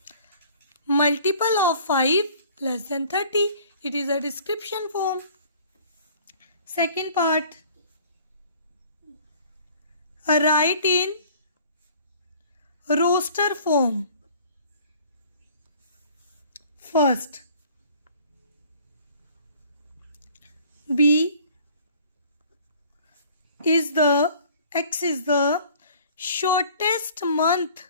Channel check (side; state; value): both; inverted; correlation -0.51